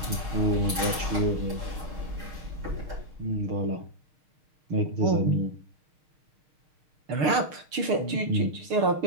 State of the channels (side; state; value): left; late; 6.6 ms